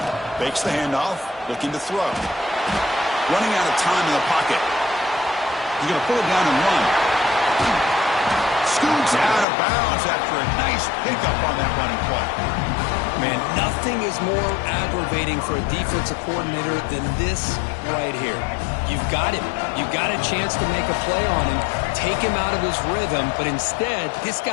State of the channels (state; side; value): drops out; right; at 9.5 s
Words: Fakes the handoff, looking to throw. Running out of time in the pocket. He's going to pull it down and run. Scoots out of bounds after a nice pickup on that running play. Man, nothing is more aggravating for a defensive coordinator than this right here. You've got him. You've got a chance to make a play on him, take him out of his rhythm, but instead, this